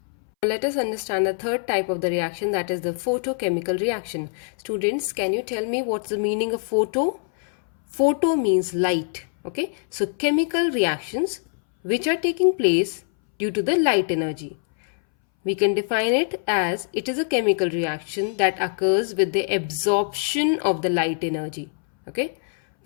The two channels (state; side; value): silent; right; 62 dB below the other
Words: Let us understand the third type of the reaction, that is the photochemical reaction. Students, can you tell me what's the meaning of photo? Photo means light. Okay, so chemical reactions which are taking place due to the light energy. We can define it as it is a chemical reaction that occurs with the absorption of the light energy. Okay,